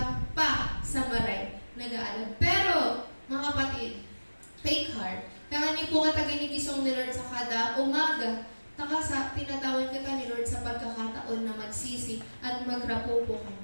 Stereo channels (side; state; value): both; inverted; correlation -1.00